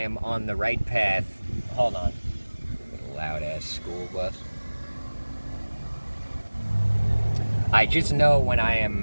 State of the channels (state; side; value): inverted; both; correlation -1.00